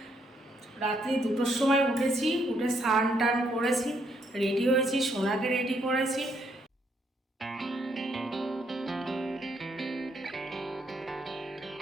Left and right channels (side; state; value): both; normal; correlation 0.73